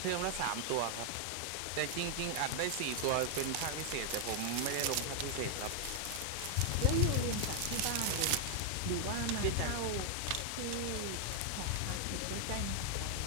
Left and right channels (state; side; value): different; both; correlation 0.00